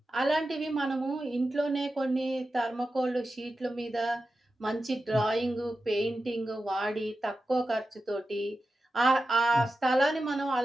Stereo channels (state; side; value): normal; both; correlation 0.92